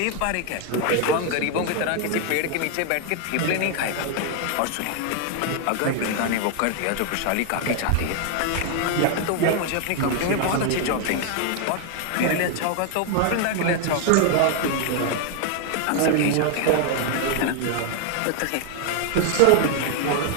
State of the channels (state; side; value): different; both; correlation 0.00